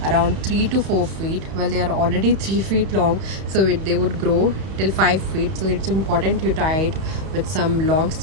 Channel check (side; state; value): left; late; 31 ms